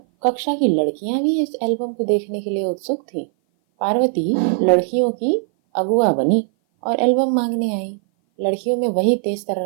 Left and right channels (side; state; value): left; silent; 57 dB below the other